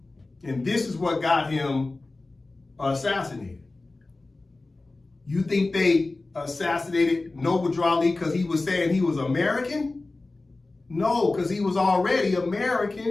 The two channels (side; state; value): right; quieter; 3.2 dB